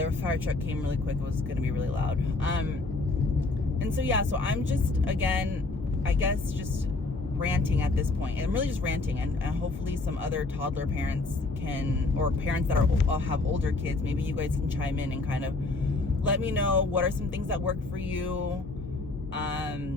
fire truck came really quick. It was going to be really loud. And so, yeah, so I'm just, again, I guess just ranting at this point. And I'm really just ranting. And hopefully some other toddler parents can, or parents that have older kids, maybe you guys can chime in and kind of let me know what are some things that work for you.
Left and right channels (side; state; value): right; quieter; 3.3 dB